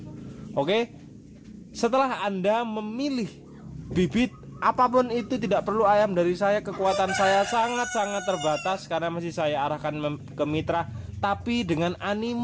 Oke, setelah Anda memilih bibit apapun itu, tidak perlu ayam dari saya, kekuatan saya sangat-sangat terbatas karena masih saya arahkan ke mitra. Tapi dengan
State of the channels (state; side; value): identical; both; correlation 1.00